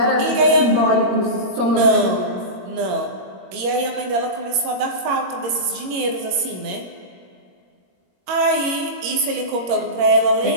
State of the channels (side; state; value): left; late; 21 ms